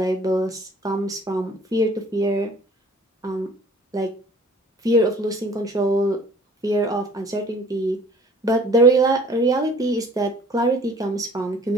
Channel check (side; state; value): both; normal; correlation 0.52